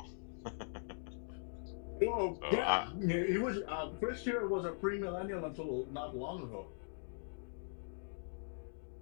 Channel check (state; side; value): silent; right; digital silence